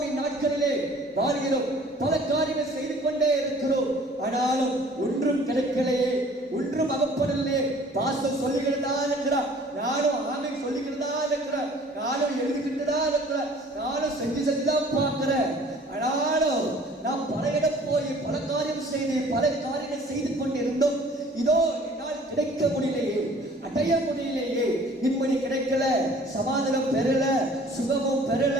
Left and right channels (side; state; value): both; normal; correlation 0.52